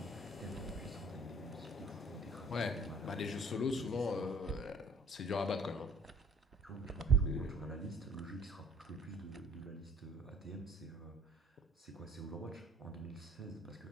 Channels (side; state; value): both; normal; correlation 0.54